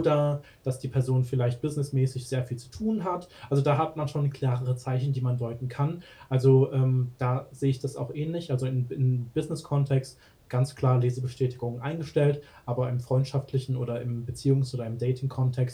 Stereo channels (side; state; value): both; identical; correlation 1.00